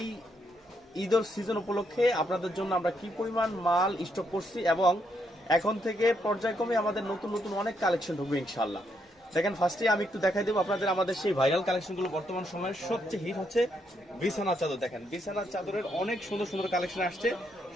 ঈদের সিজন উপলক্ষে আপনাদের জন্য আমরা কি পরিমাণ মাল স্টক করছি এবং এখন থেকে পর্যায়ক্রমে আমাদের নতুন নতুন অনেক কালেকশন ঢুকবে ইনশাআল্লাহ। দেখেন, ফার্স্টে আমি একটু দেখাই দেবো আপনাদের আমাদের সেই ভাইরাল কালেকশনগুলো। বর্তমান সময়ের সবচেয়ে হিট হচ্ছে বিছানার চাদর। দেখেন, বিছানার চাদরের অনেক সুন্দর সুন্দর কালেকশন আসছে।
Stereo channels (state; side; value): normal; both; correlation 0.77